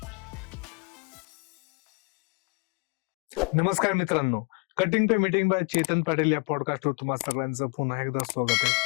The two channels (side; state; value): right; quieter; 31.6 dB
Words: नमस्कार मित्रांनो, cutting pay meeting by Chetan Patil या पॉडकास्टवर तुम्हा सगळ्यांचं पुन्हा एकदा स्वागत आहे.